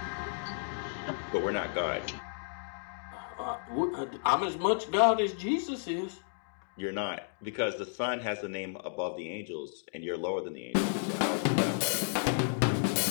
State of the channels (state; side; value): silent; right; digital silence